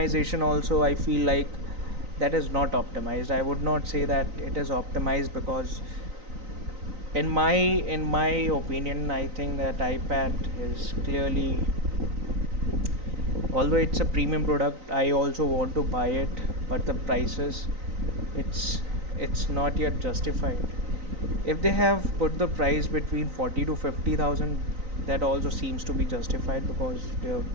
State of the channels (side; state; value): left; late; 3.9 ms